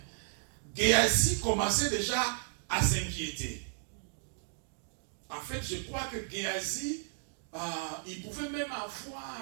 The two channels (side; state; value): left; silent; digital silence